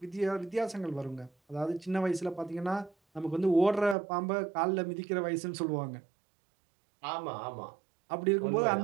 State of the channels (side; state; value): left; drops out; at 4.0 s